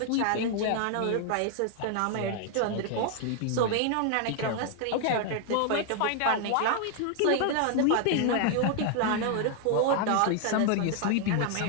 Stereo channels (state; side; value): different; both; correlation 0.00